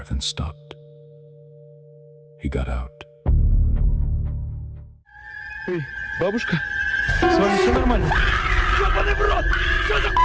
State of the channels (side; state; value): both; identical; correlation 1.00